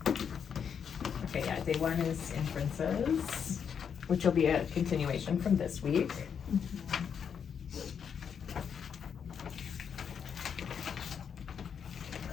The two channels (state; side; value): quieter; right; 7.3 dB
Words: okay, yeah, day 1 is inferences, which will be a continuation from this week.